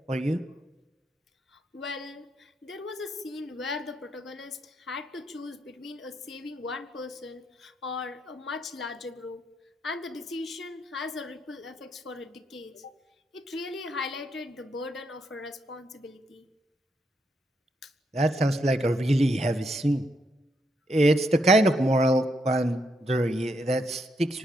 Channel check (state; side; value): normal; both; correlation 0.78